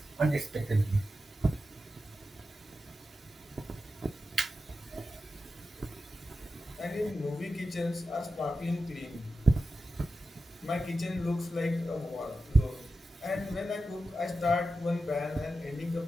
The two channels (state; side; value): normal; both; correlation 0.91